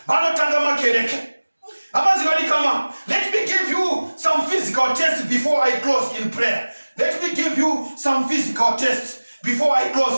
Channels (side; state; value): both; inverted; correlation -1.00